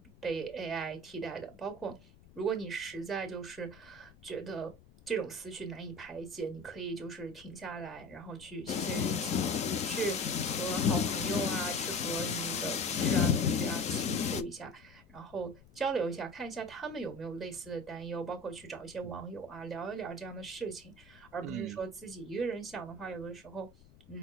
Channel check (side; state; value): left; noise; rumble, 23 dB below the sound